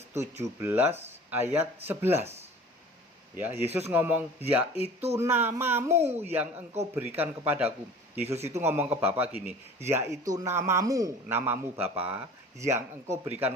17 ayat 11. Ya, Yesus ngomong, "Yaitu namamu yang engkau berikan kepadaku." Yesus itu ngomong ke Bapa gini, "Yaitu namamu Bapa yang engkau berikan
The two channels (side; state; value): both; normal; correlation 0.43